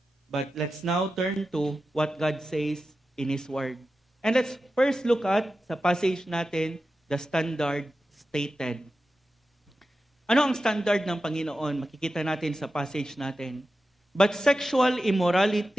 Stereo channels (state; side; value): normal; both; correlation 0.92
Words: But let's now turn to what God says in His Word. And let's first look at, sa passage natin, the standard stated. Ano ang standard ng Panginoon? Makikita natin sa passage natin. But sexual